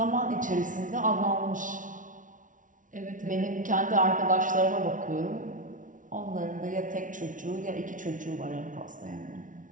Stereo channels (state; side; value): late; left; 0.38 ms